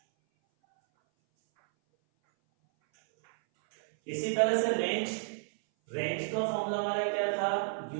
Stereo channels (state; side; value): silent; left; 57 dB below the other